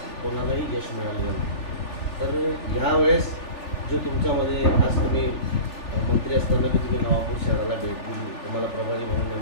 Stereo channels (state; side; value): late; right; 3.4 ms